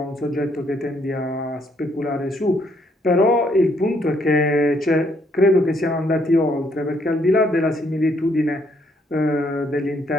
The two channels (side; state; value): both; normal; correlation 0.70